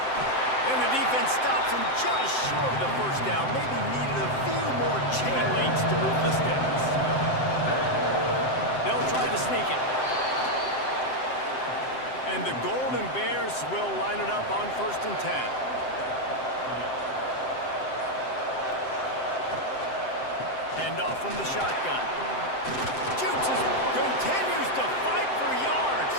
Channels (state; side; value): late; right; 7.7 ms